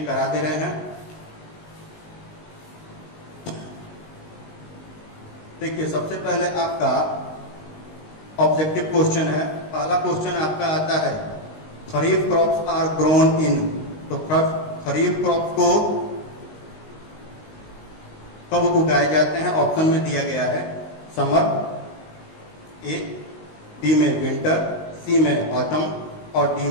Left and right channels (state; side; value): late; right; 19 ms